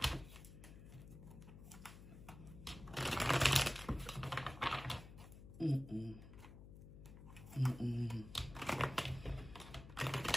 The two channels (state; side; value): noise; left; hum, 15 dB below the sound